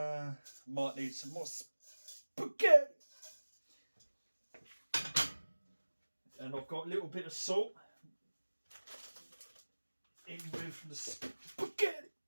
need some more spaghetti. And I've got a little bit of salt in with the spaghetti.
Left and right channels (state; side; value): inverted; both; correlation -1.00